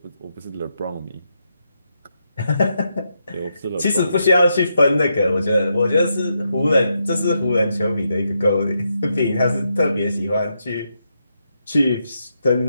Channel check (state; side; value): inverted; both; correlation -0.82